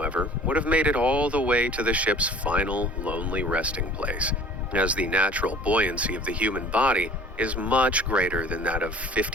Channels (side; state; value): both; normal; correlation 0.48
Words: would have made it all the way to the ship's final lonely resting place, as the natural buoyancy of the human body is much greater than that of